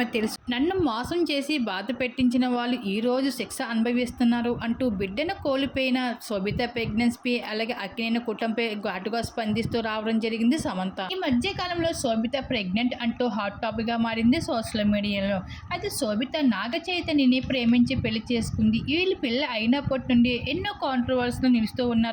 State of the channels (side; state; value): both; identical; correlation 1.00